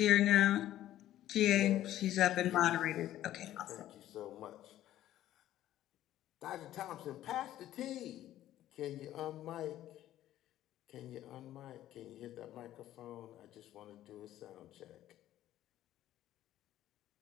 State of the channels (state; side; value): quieter; right; 13.2 dB